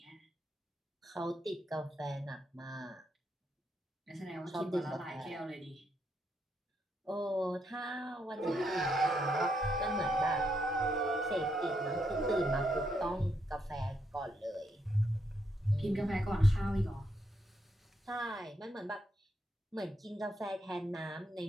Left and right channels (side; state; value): both; normal; correlation 0.78